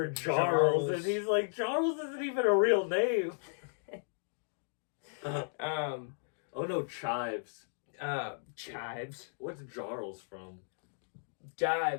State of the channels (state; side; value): silent; right; digital silence